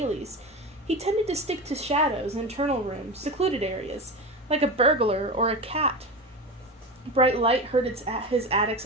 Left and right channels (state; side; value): normal; both; correlation 0.24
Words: He tended to stick to shadows, internal rooms, secluded areas, like a burglar or a cat. Bright light hurt his attic's